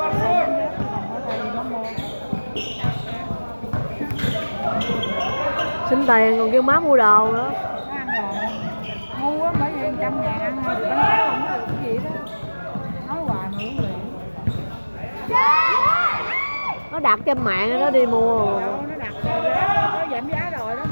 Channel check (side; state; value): both; inverted; correlation -1.00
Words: Xin tiền còn kêu má mua đồ nữa. Ngu á, bởi vì 100.000 ăn thôi, bánh táo không có được cái gì đó. Nói hoài mà uống liền. Nó đặt trên mạng nó đi mua. Đâu, nó đặt giá, nó giảm giá rồi đó,